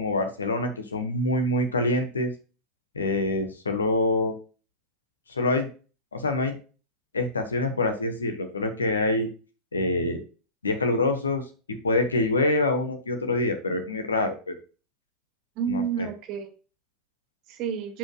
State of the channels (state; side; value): inverted; both; correlation -0.34